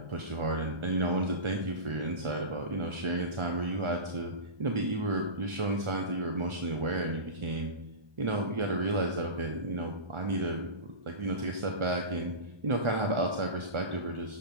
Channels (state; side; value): late; left; 1.4 ms